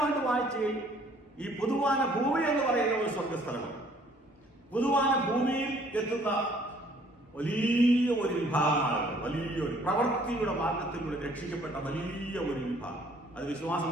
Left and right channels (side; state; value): both; normal; correlation 0.60